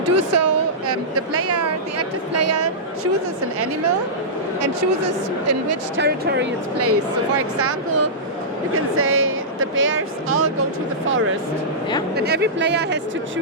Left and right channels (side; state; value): both; normal; correlation -0.16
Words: do so. The active player chooses an animal and chooses in which territory it's placed. So, for example, you can say the bears all go to the forest. And every player has to